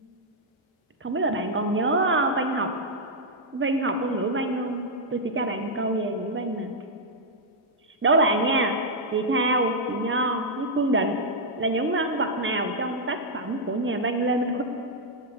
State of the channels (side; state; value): both; normal; correlation -0.05